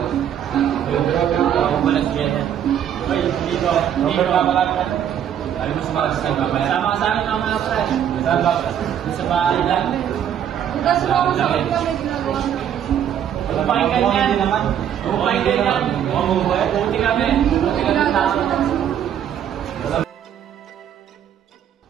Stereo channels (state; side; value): quieter; left; 9.6 dB